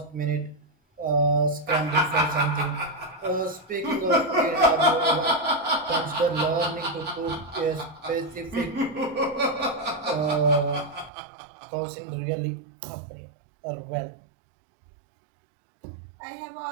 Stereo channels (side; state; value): left; drops out; at 11.1 s